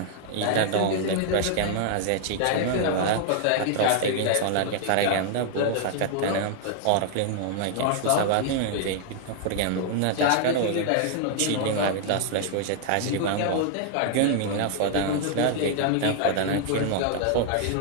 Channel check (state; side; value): different; both; correlation 0.00